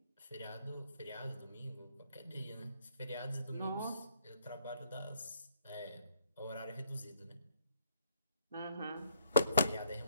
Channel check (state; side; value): inverted; both; correlation -0.67